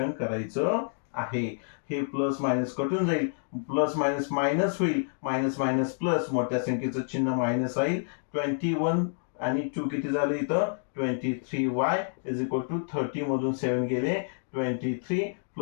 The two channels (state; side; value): silent; right; digital silence